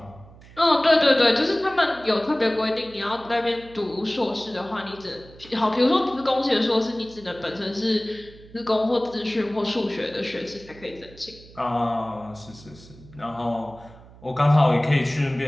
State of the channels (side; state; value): right; noise; hum, 21 dB below the sound